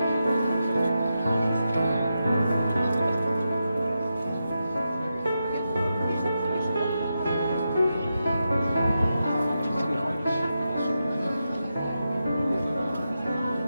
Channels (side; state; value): both; inverted; correlation -0.88